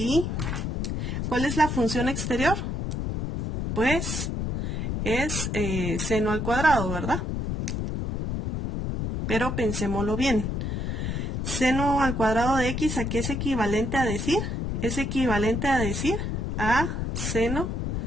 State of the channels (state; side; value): noise; left; rumble, 2 dB below the sound